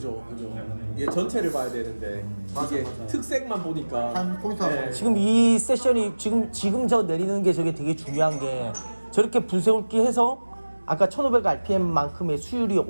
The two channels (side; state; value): both; inverted; correlation -1.00